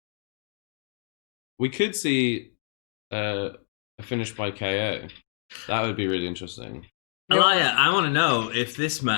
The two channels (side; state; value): right; silent; digital silence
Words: We could see a finish by KO. That would be really interesting. Elia, I want to know if this